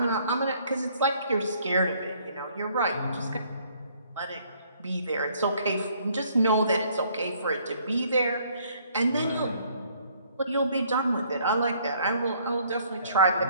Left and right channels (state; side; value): inverted; both; correlation -0.62